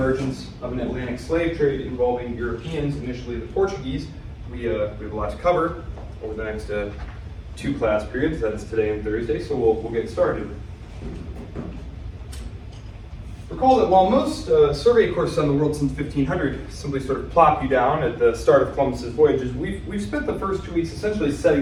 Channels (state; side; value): identical; both; correlation 1.00